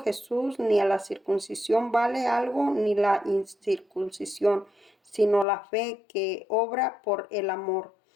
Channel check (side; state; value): right; drops out; at 5.5 s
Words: Jesús ni a la circuncisión vale algo ni la incircuncisión, sino la fe que obra por el amor.